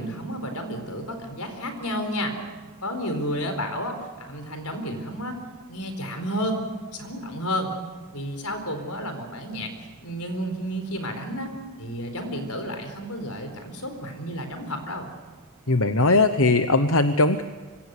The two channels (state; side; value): normal; both; correlation 0.03